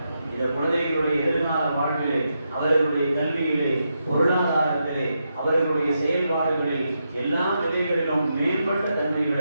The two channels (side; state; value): both; inverted; correlation -0.84